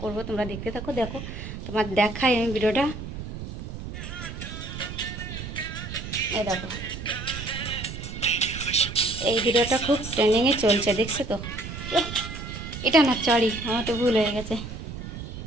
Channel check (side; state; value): right; noise; rumble, 9 dB below the sound